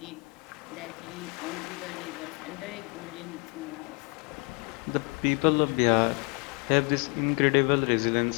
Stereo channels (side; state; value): right; quieter; 31.2 dB